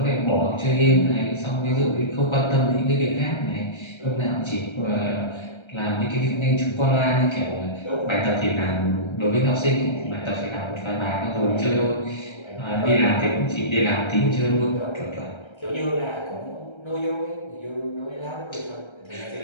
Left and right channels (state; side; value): late; right; 1.3 ms